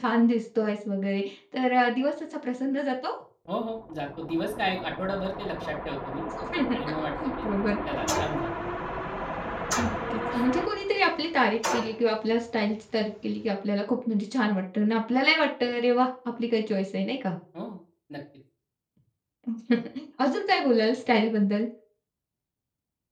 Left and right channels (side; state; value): both; identical; correlation 1.00